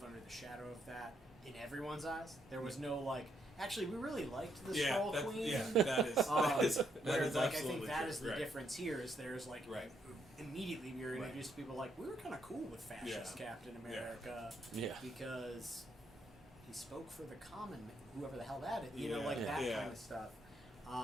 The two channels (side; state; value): both; normal; correlation 0.75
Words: under the shadow of that in everyone's eyes. There was no like, actually, we really liked the Skrull that, Queen. yeah, that is Whereas, like, I absolutely think that true. is the Right. difference here. Is there's like Right. immediately we were Right. introduced to people like we were kind of cool with fascist Yeah. Captain Yeah. America Yeah. because he spoke for the common man, whoever the hell that is, you know, Yeah. like that Yeah. kind of stuff.